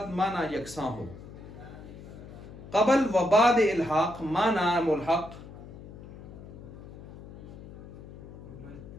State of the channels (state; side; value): noise; left; hum, 15 dB below the sound